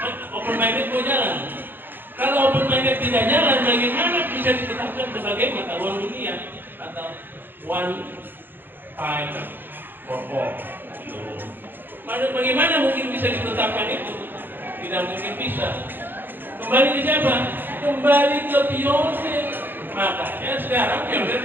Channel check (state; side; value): late; left; 0.095 ms